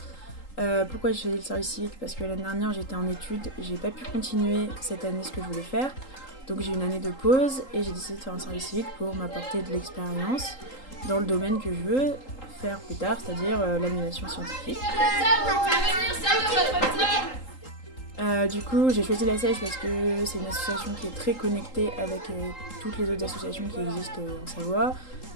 Pourquoi j'ai choisi le service civique? Parce que l'année dernière j'étais en études, j'ai pas pu continuer cette année ce que je voulais faire. Donc j'ai eu une année de pause et j'ai décidé de faire un service civique pour m'apporter de l'expérience dans le domaine que je veux faire plus tard, c'est-à-dire l'animation scientifique. Du coup j'ai choisi la Seiche parce que c'est une association qui est très connectée avec toutes les autres associations qui existent en Savoie,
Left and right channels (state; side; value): late; right; 3.8 ms